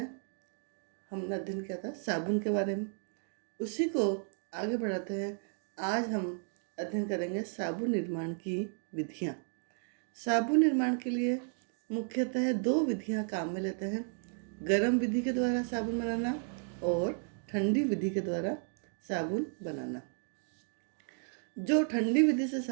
हमने अध्ययन किया था साबुन के बारे में। उसी को आगे बढ़ाते हैं। आज हम अध्ययन करेंगे साबुन निर्माण की विधियाँ। साबुन निर्माण के लिए मुख्यतः दो विधियाँ काम में लेते हैं। गर्म विधि के द्वारा साबुन बनाना और ठंडी विधि के द्वारा साबुन बनाना। जो ठंडी विधि से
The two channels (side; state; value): left; silent; 55 dB below the other